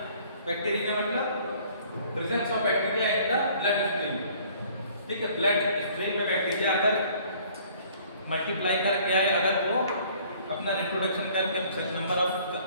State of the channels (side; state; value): both; inverted; correlation -0.56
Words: Bacteria मतलब presence of bacteria in the bloodstream, ठीक है। ब्लड स्ट्रीम में बैक्टीरिया अगर मल्टीप्लाई कर गया है, अगर वो अपना रिप्रोडक्शन करके नंबर ऑफ